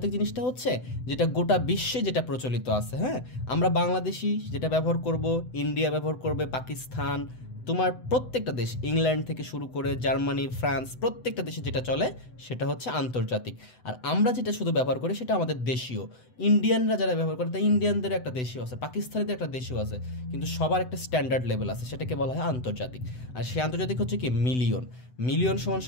জিনিসটা হচ্ছে যেটা গোটা বিশ্বে যেটা প্রচলিত আছে, হ্যাঁ। আমরা বাংলাদেশি যেটা ব্যবহার করব, ইন্ডিয়া ব্যবহার করবে, পাকিস্তান, তোমার প্রত্যেকটা দেশ, ইংল্যান্ড থেকে শুরু করে জার্মানি, ফ্রান্স, প্রত্যেকটা দেশে যেটা চলে সেটা হচ্ছে আন্তর্জাতিক। আর আমরা যেটা শুধু ব্যবহার করি সেটা আমাদের দেশীয়। ইন্ডিয়ানরা যারা ব্যবহার করে, তাই ইন্ডিয়ানদের একটা দেশীয় আছে, পাকিস্তানিদের একটা দেশীয় আছে, কিন্তু সবার একটা স্ট্যান্ডার্ড লেভেল আছে, সেটাকে বলা হয় আন্তর্জাতিক। আর সেই আন্তর্জাতিক হচ্ছে কি? মিলিয়ন। মিলিয়ন সমান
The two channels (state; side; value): late; right; 7.9 ms